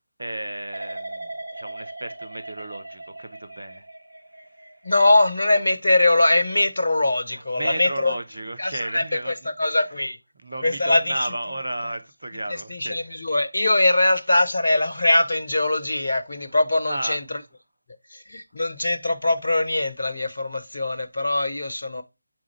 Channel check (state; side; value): inverted; both; correlation -0.94